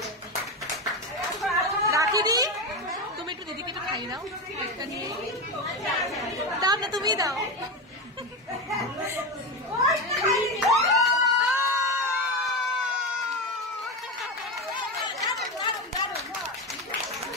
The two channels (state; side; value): normal; both; correlation 0.17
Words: দি, তুমি একটু দিদিকে একটু খাইয়ে দাও, দাও না, তুমি দাও।